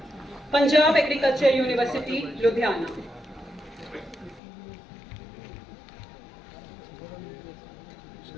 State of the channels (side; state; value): right; drops out; at 4.4 s